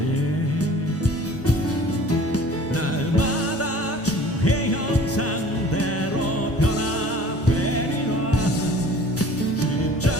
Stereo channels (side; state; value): both; normal; correlation 0.47